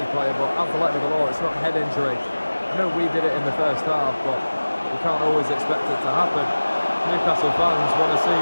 player, but as the letter of the law, it's not a head injury. I know we did it in the first half, but we can't always expect it to happen. Newcastle fans want to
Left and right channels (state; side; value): inverted; both; correlation -1.00